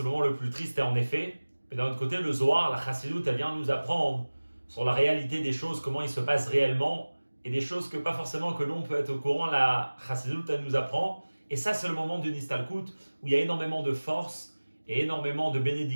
le moment le plus triste et en effet. Mais d'un autre côté, le Zohar, la Chassidut, elle vient nous apprendre sur la réalité des choses, comment il se passe réellement, et des choses que pas forcément que l'on peut être au courant, la Chassidut, elle nous apprend. Et ça, c'est le moment d'une Istalkut où il y a énormément de force et énormément de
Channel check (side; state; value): both; inverted; correlation -1.00